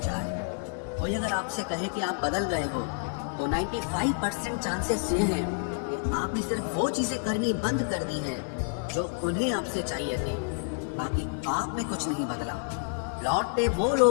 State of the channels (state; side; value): silent; right; digital silence